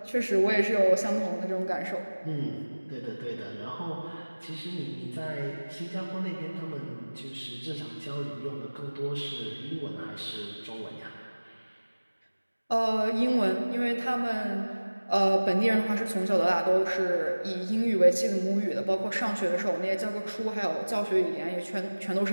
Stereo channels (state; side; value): inverted; both; correlation -1.00